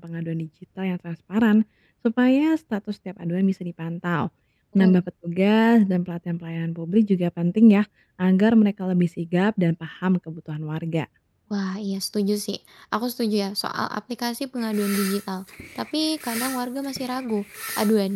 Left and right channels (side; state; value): both; identical; correlation 1.00